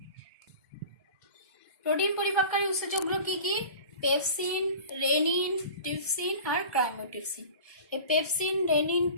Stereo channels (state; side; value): inverted; both; correlation -0.38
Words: প্রোটিন পরিপাককারী উৎসেচকগুলো কি কি? পেপসিন, রেনিন, ট্রিপসিন আর ক্রাইমোট্রিপসিন। এই পেপসিন, রেনিন,